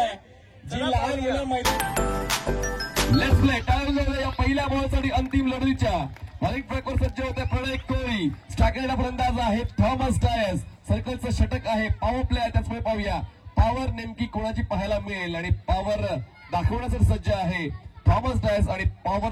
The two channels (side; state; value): both; identical; correlation 1.00